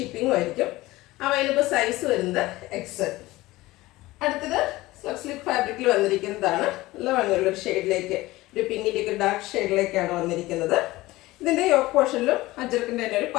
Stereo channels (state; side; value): quieter; right; 18.8 dB